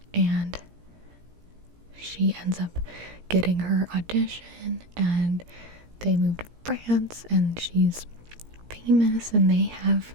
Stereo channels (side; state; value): left; late; 17 ms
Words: And she ends up getting her audition, and they move to France, and she's famous, and they